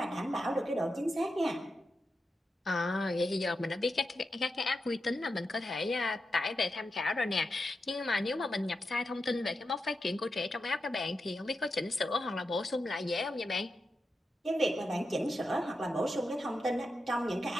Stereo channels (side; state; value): both; normal; correlation 0.88